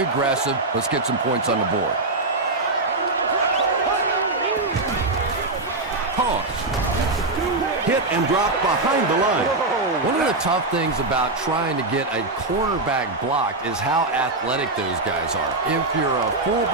Let's get some points on the board. Toss. Hit and drop behind the line. One of the tough things about trying to get a cornerback blocked is how athletic those guys are. If you're a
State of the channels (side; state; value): left; quieter; 3.1 dB